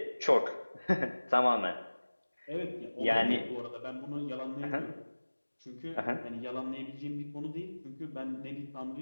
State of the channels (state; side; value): inverted; both; correlation -1.00